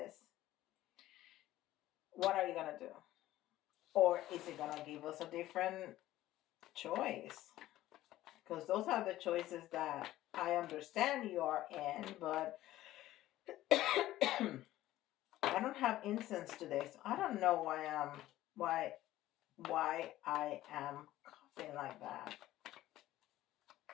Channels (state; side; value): quieter; right; 15.0 dB